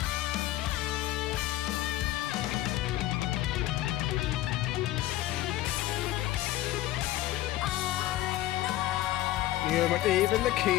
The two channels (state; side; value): quieter; right; 15.2 dB